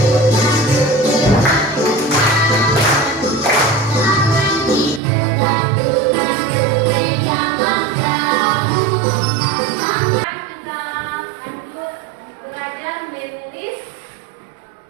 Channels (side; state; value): left; drops out; at 5.0 s